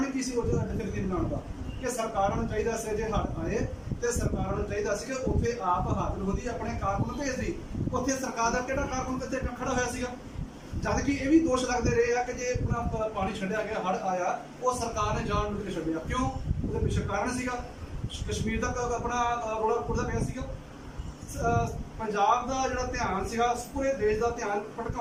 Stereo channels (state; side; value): identical; both; correlation 1.00